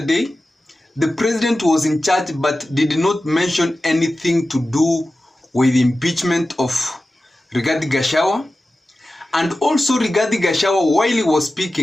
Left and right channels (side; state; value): both; normal; correlation 0.94